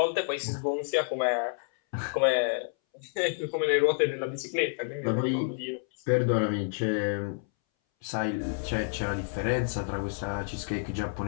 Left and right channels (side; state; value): right; silent; 58 dB below the other